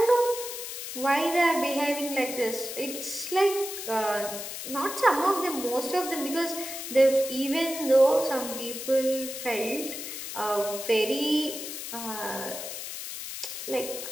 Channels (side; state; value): left; noise; hiss, 7 dB below the sound